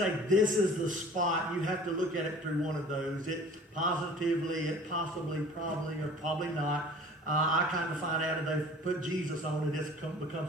this is the spot, you have to look at it through one of those. It positively, it possibly, probably, or probably not. I kind of find out that they've put Jesus on it. It becomes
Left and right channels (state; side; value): normal; both; correlation 0.46